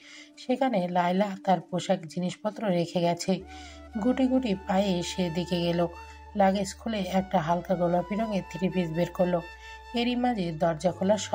সেখানে লায়লা তার পোশাক জিনিসপত্র রেখে গেছে। গুটি গুটি পায়ে সেদিকে গেল। লাগেজ খুলে একটা হালকা গোলাপি রঙের 3 পিস বের করলো। এরই মাঝে দরজা খোলার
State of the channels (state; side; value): identical; both; correlation 1.00